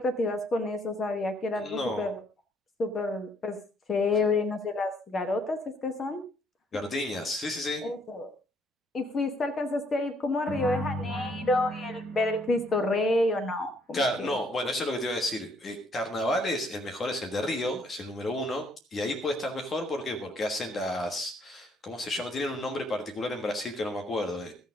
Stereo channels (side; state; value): both; normal; correlation 0.67